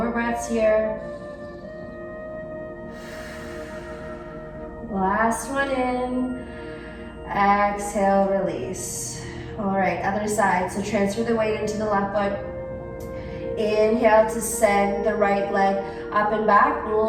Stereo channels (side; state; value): both; identical; correlation 1.00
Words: breaths here. Last one in. Exhale, release. All right, other side. So transfer the weight into the left foot. Inhale to send the right leg up and back.